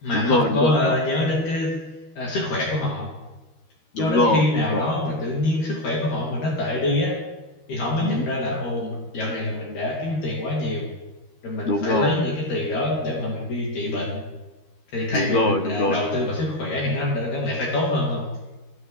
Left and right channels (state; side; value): late; right; 13 ms